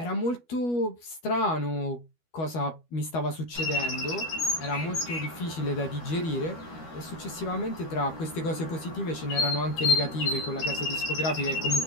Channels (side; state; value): right; late; 12 ms